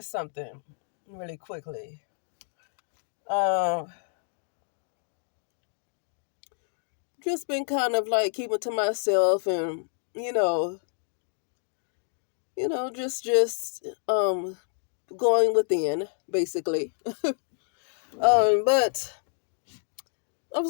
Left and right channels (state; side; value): silent; right; 59 dB below the other